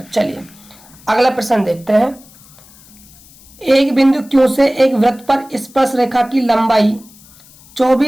चलिए अगला प्रश्न देखते हैं, एक बिंदु Q से एक वृत्त पर स्पर्श रेखा की लंबाई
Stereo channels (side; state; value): left; noise; hiss, 25 dB below the sound